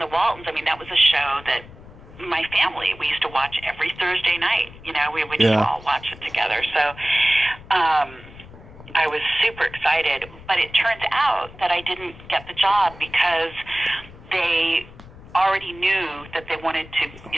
Waltons, that was a show that my family, we used to watch every Thursday night. We would just all watch it together. So I was super excited, but it turns out that I didn't get the job because they already knew that they wanted to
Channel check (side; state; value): left; noise; rumble, 19 dB below the sound